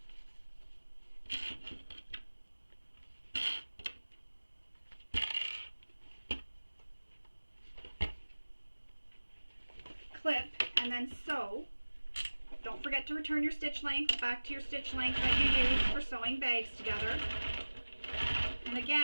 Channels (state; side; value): inverted; both; correlation -1.00